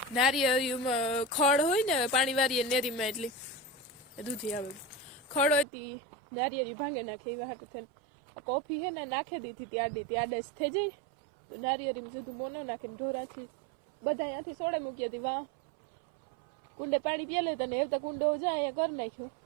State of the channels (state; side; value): drops out; left; at 5.7 s